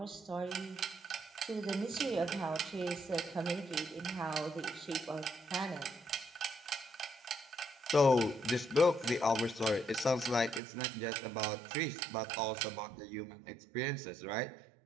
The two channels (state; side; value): drops out; left; at 10.6 s